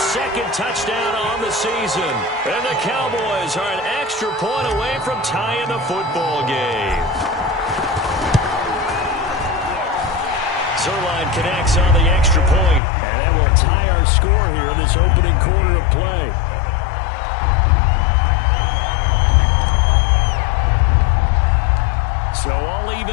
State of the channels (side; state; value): right; drops out; at 12.8 s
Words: touchdown on the season. And the Cowboys are an extra point away from tying the football game. Zerline connects on the extra point, and that will tie our score here in this opening quarter of play. So all